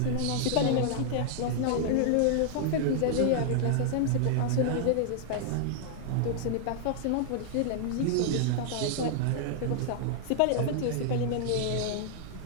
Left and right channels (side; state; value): both; different; correlation -0.01